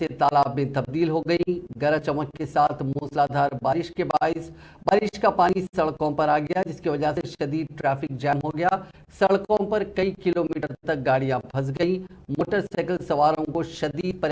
तालाब में तब्दील हो गई। गरज चमक के साथ मूसलाधार बारिश के बाइस बारिश का पानी सड़कों पर आ गया, जिसकी वजह से शदीद ट्रैफिक जैम हो गया। सड़कों पर कई किलोमीटर तक गाड़ियां फंस गईं। मोटरसाइकिल सवारों को शदीद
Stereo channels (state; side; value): identical; both; correlation 1.00